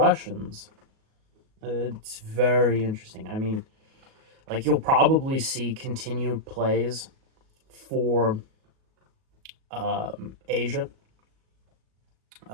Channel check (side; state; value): left; late; 37 ms